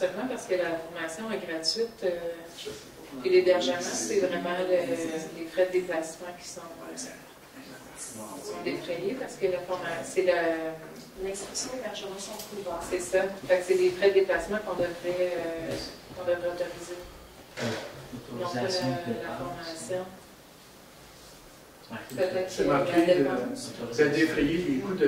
parce que la formation est gratuite et l'hébergement, c'est vraiment les frais de déplacement qui sont défrayés, parce que la formation, c'est L'inscription et l'hébergement sont couverts. c'est ça. Fait que c'est les frais de déplacement qu'on devrait autoriser. Non pas la formation. C'est marqué, c'est défrayer les coûts de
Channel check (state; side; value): identical; both; correlation 1.00